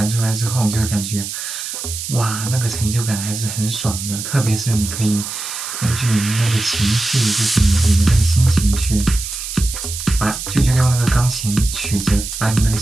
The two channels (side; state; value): right; noise; hiss, 7 dB below the sound